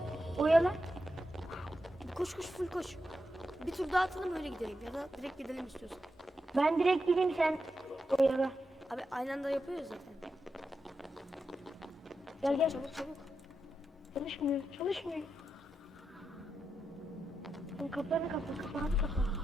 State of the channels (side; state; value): both; normal; correlation 0.87